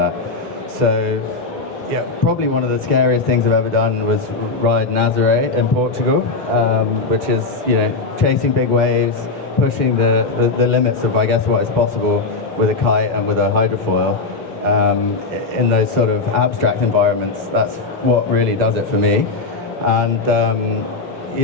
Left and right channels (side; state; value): right; quieter; 3.8 dB